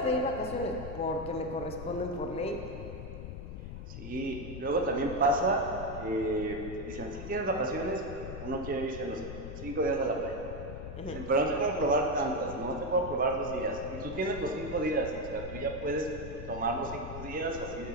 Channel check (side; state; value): left; noise; rumble, 9 dB below the sound